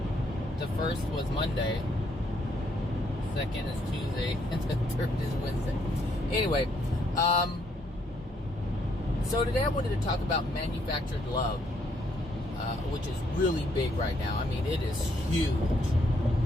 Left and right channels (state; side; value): normal; both; correlation 0.71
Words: the first was Monday. Second is Tuesday, and the third is Wednesday. Anyway, so today I wanted to talk about manufactured love, which is really big right now. I mean, it is huge.